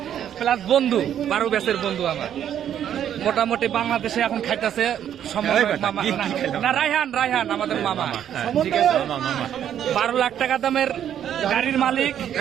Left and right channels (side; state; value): left; quieter; 10.0 dB